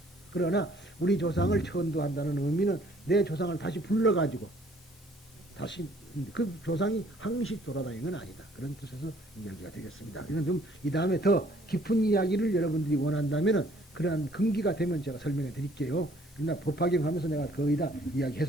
그러나 우리 조상을 천도한다는 의미는 내 조상을 다시 불러가지고 다시 그 조상이 항시 돌아다니는 건 아니다. 그런 뜻에서 이야기가 되겠습니다. 이건 좀 이 다음에 더 깊은 이야기를 여러분들이 원한다면은 그러한 근기가 되면 제가 설명해 드릴게요. 그러나 법화경하면서 내가 거의 다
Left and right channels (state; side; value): normal; both; correlation 0.60